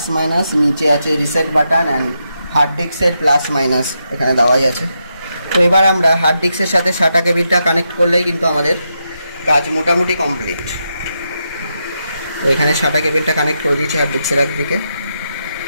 মাইনাস, নিচে আছে রিসেট বাটন অ্যান্ড হার্ড ডিস্কের প্লাস মাইনাস এখানে দেওয়াই আছে। তো এবার আমরা হার্ড ডিস্কের সাথে SATA কেবিলটা কানেক্ট করলেই কিন্তু আমাদের কাজ মোটামুটি কমপ্লিট। তো এখানে SATA কেবিলটা কানেক্ট করে দিয়েছি হার্ড ডিস্কের একদিকে,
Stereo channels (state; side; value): inverted; both; correlation -0.84